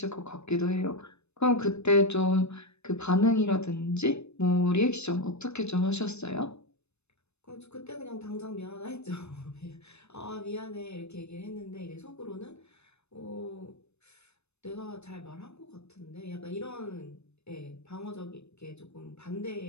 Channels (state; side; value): late; right; 0.81 ms